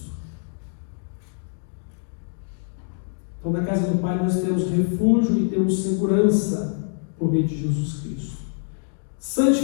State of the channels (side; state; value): right; silent; 62 dB below the other